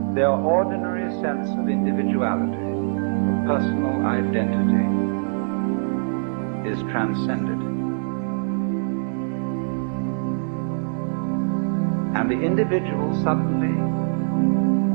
their ordinary sense of individuality, of personal identity, is transcended. And the individual suddenly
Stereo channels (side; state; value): left; silent; digital silence